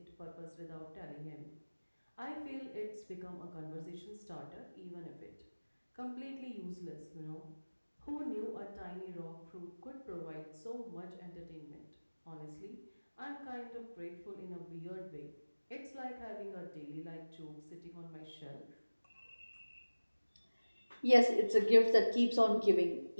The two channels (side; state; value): both; inverted; correlation -1.00